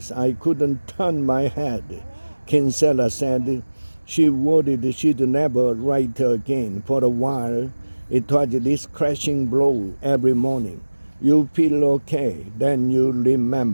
I couldn't turn my head. Kinsella said she worried she'd never write again. For a while, it was this crashing blow every morning. You feel okay, then you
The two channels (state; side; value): inverted; both; correlation -1.00